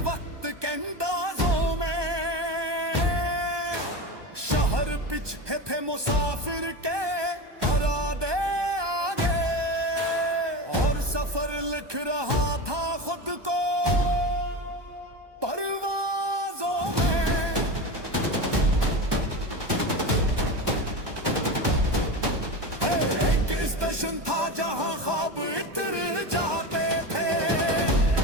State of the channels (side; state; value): left; late; 1.2 ms